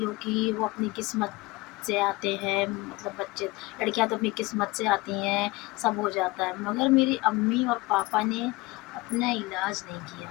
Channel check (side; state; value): right; quieter; 22.3 dB